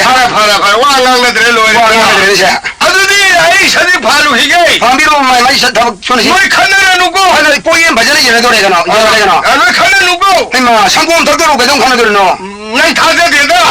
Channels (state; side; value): identical; both; correlation 1.00